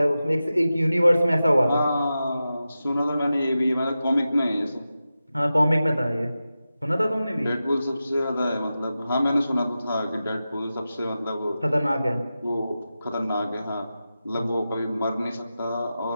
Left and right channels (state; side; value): inverted; both; correlation -0.93